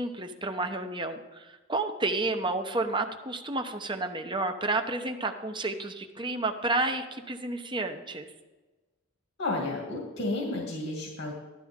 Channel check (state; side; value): normal; both; correlation 0.16